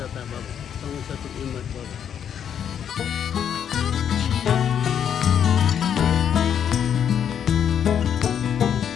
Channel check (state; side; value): quieter; right; 8.6 dB